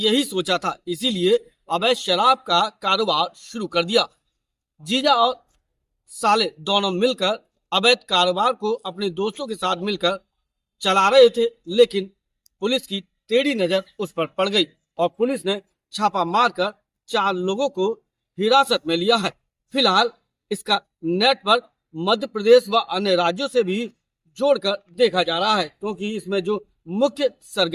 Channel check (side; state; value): both; identical; correlation 1.00